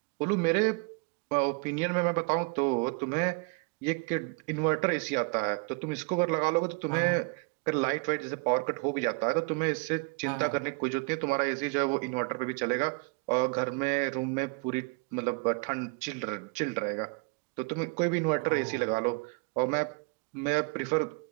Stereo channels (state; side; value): quieter; left; 31.8 dB